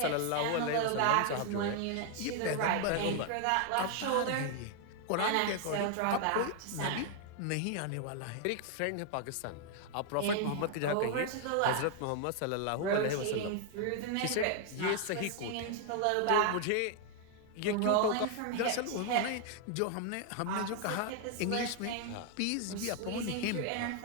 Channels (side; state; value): both; different; correlation 0.00